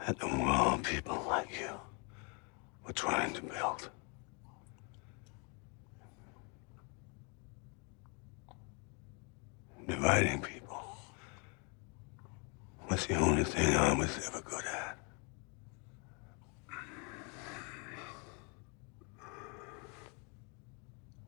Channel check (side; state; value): right; quieter; 34.8 dB